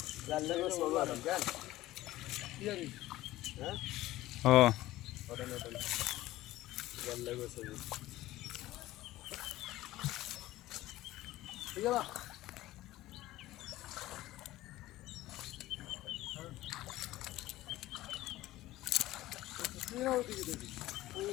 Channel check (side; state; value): right; quieter; 16.4 dB